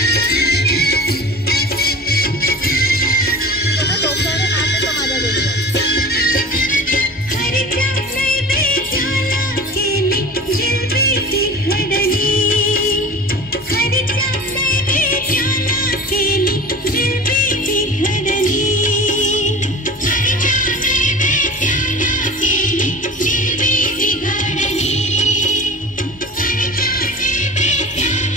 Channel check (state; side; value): normal; both; correlation 0.36